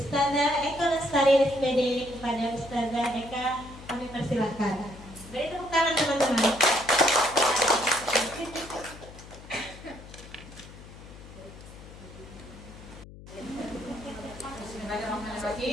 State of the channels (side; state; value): left; noise; hum, 17 dB below the sound